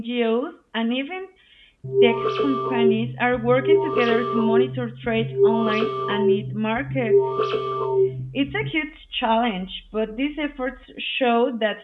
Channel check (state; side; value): identical; both; correlation 1.00